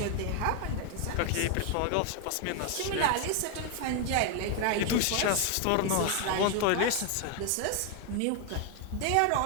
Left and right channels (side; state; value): both; different; correlation 0.01